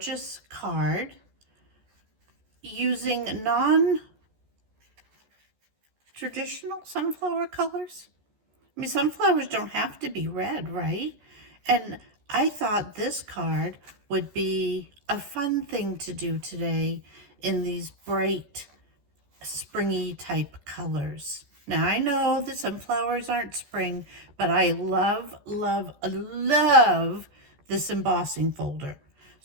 card using non-traditional sunflower colors. I mean, sunflowers don't have to be red, right? And I thought this card would be a fun thing to do today in these bright, springy type colors. Now, I know that sunflowers aren't spring, but I love, love, love this embossing folder.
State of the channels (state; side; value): late; left; 14 ms